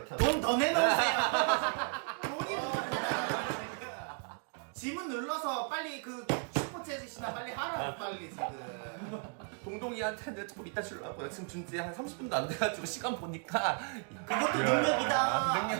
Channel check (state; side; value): quieter; left; 40.0 dB